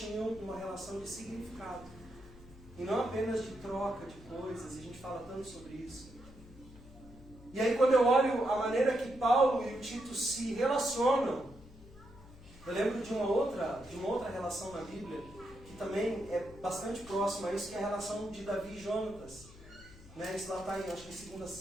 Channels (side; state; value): left; noise; hum, 20 dB below the sound